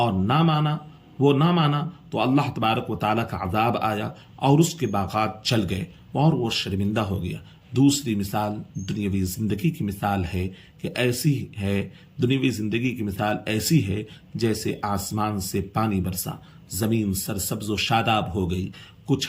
نہ مانا تو اللہ تبارک و تعالیٰ کا عذاب آیا اور اس کے باغات چل گئے اور وہ شرمندہ ہو گیا۔ دوسری مثال دنیاوی زندگی کی مثال ہے کہ ایسی ہے، دنیاوی زندگی کی مثال ایسی ہے جیسے آسمان سے پانی برسا، زمین سرسبز و شاداب ہو گئی، کچھ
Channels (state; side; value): identical; both; correlation 1.00